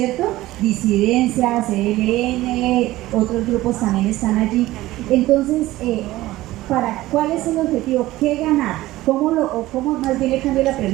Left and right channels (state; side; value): quieter; left; 16.9 dB